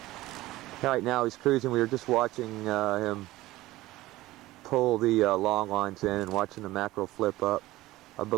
Right now he's cruising. We were just watching him pull the long lines in and watching the mackerel flip up. I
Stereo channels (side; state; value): left; quieter; 17.5 dB